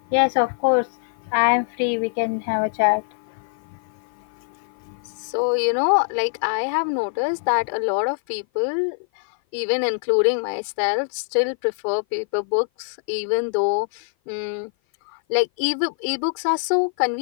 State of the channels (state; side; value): silent; right; 56 dB below the other